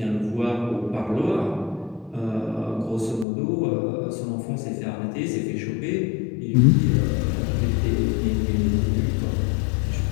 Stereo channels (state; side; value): drops out; right; at 3.2 s